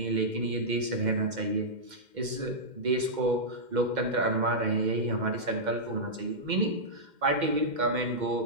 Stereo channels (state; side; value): late; left; 2.1 ms